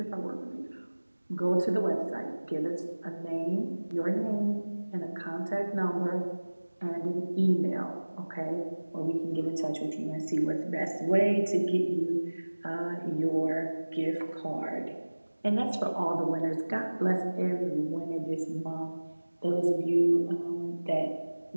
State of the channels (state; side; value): inverted; both; correlation -1.00